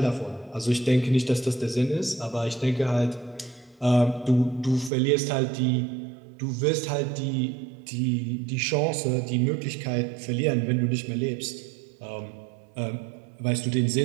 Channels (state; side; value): drops out; left; at 4.9 s